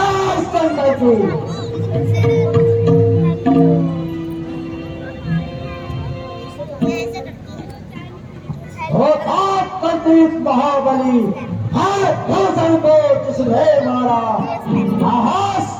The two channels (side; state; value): both; identical; correlation 1.00